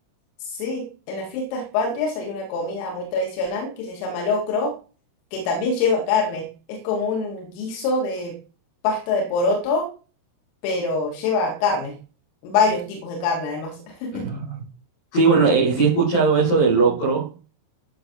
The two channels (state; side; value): late; right; 28 ms